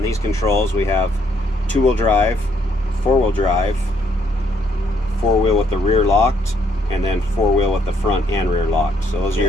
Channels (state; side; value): normal; both; correlation 0.70